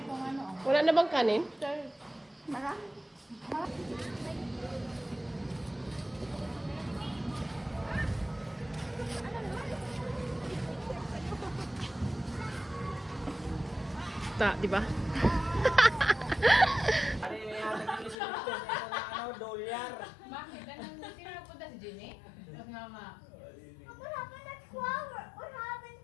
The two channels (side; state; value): right; drops out; at 18.2 s